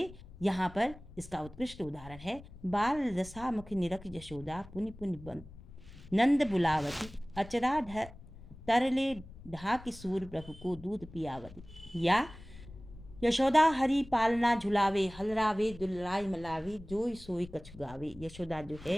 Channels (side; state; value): left; noise; rumble, 18 dB below the sound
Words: यहाँ पर इसका उत्कृष्ट उदाहरण है, बाल रसा मुख निरख यशोदा, पुनि पुनि बन नंद बुलावती, अचरा तरले ढा किशोर प्रभु को दूध पियावती। या यशोदा हरि पालना झुलावे, हलरावे दुलराय मलावे, जोई सोई कछु गावे। यशोदा जो